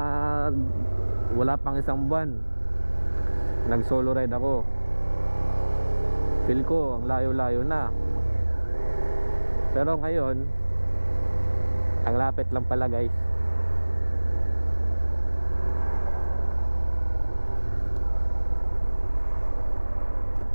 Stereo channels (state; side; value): inverted; both; correlation -1.00